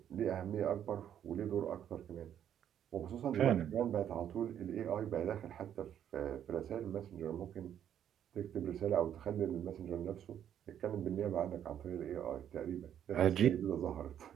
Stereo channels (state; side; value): quieter; left; 9.9 dB